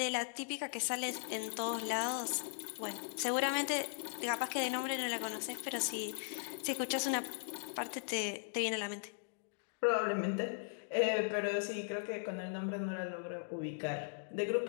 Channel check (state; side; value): silent; right; digital silence